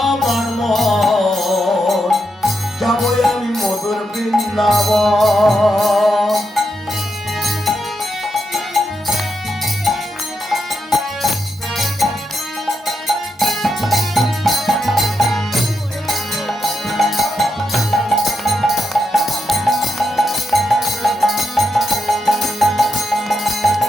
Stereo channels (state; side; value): normal; both; correlation 0.84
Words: আমার মন, যাবো আমি মধুর বৃন্দাবন।